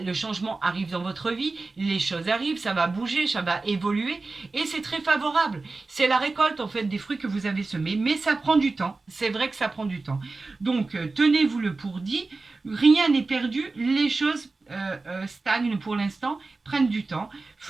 changement arrive dans votre vie, les choses arrivent, ça va bouger, ça va évoluer et c'est très favorable. C'est la récolte en fait des fruits que vous avez semés, mais ça prend du temps. C'est vrai que ça prend du temps. Donc, tenez-vous le pour dit. Rien n'est perdu, les choses stagnent pour l'instant, prennent du temps.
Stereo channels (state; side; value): quieter; left; 3.7 dB